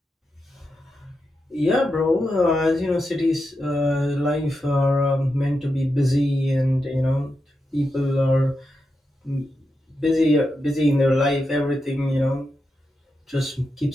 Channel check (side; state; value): both; normal; correlation 0.87